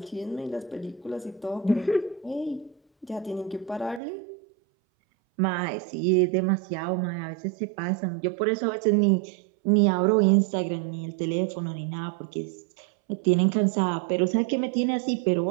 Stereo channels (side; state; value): left; drops out; at 4.0 s